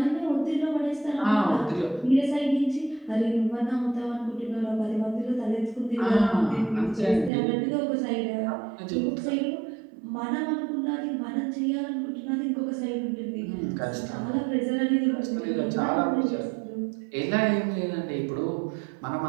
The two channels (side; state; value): left; drops out; at 7.3 s